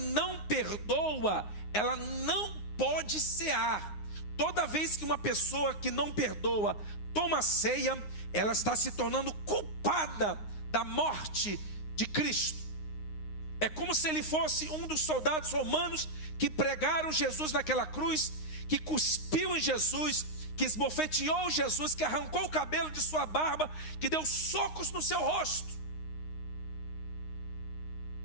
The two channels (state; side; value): late; right; 9.6 ms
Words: perdoa, ela não pode cear. Toda vez que uma pessoa que não perdoa toma ceia, ela está se tornando culpada da morte de Cristo. É como se ele fosse um dos soldados romanos que pregaram Jesus naquela cruz, que cuspiu em Jesus, que esbofeteou Jesus, que arrancou o cabelo de sua barba, que deu socos no seu rosto.